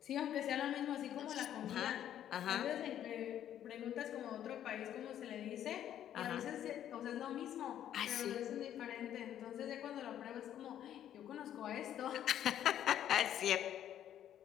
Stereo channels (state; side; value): quieter; right; 10.8 dB